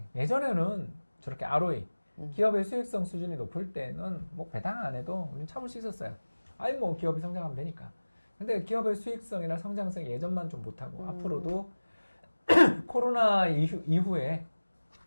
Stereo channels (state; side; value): inverted; both; correlation -1.00